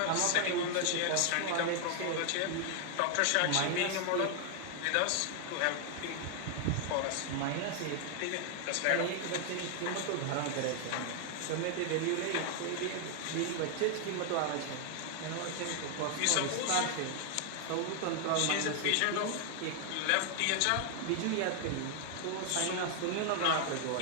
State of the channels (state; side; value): different; both; correlation 0.00